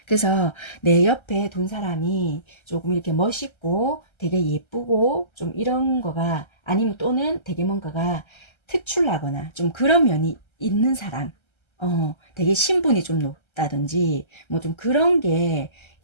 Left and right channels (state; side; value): late; right; 1.3 ms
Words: 그래서 내 옆에 둔 사람이 조금 이렇게 멋있고 되게 예쁘고 좀 이런 거가, 아니면 또는 되게 뭔가가 특출나거나 좀 그런 면이 있는 사람, 되게 신분이 좀 높다든지 뭐 좀 그런 게